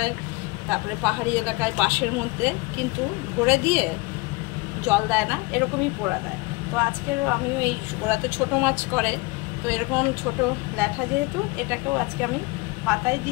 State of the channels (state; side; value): quieter; right; 24.9 dB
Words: তারপরে পাহাড়ি এলাকায় বাঁশের মধ্যে কিন্তু ভরে দিয়ে জল দেয় না, এরকমই পোড়া দেয়। তো আজকের আমিও এই, ওরা তো ছোটো মাছ করে, তো এরকম ছোট ল্যাঠা যেহেতু, এটাকেও আজকে আমি পাতায়